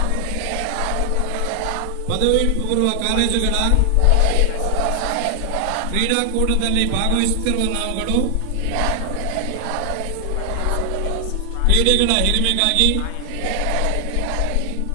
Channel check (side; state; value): both; different; correlation 0.00